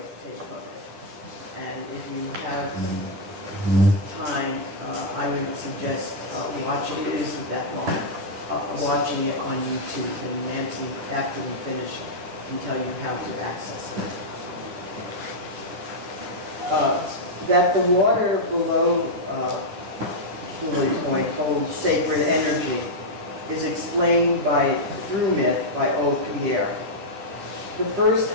of it. And if you have time, I would suggest watching it. It isn't that long. Watching it on YouTube, and Nancy, after we finish, can tell you how to access it. That the water below Lily Point holds sacred energy is explained through myth by Old Pierre. The first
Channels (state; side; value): late; left; 10 ms